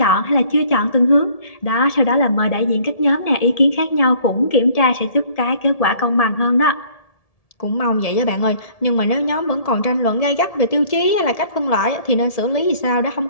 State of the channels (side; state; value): right; late; 1.7 ms